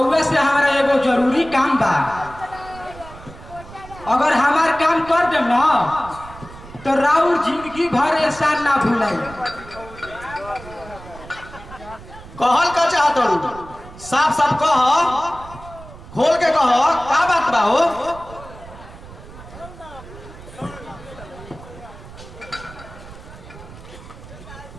से हमारा एगो जरूरी काम बा अगर हमार काम कर दे ना तो राउर जिंदगी भर एहसान ना भूलाई कहल का चाहत हूं साफ साफ कह खोल के कह का बात बा हो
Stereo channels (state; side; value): noise; right; rumble, 17 dB below the sound